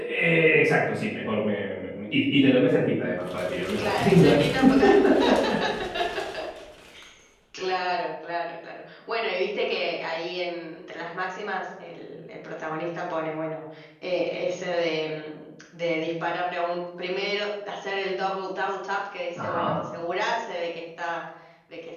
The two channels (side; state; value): both; identical; correlation 1.00